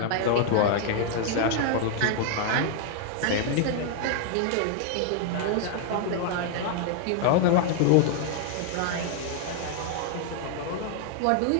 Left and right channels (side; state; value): both; different; correlation 0.00